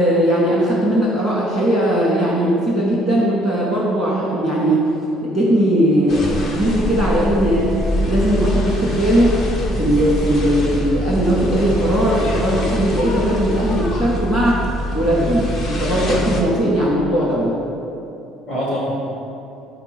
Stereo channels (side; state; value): both; normal; correlation 0.67